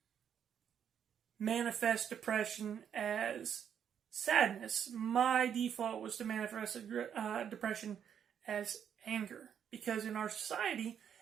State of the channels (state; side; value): quieter; left; 8.5 dB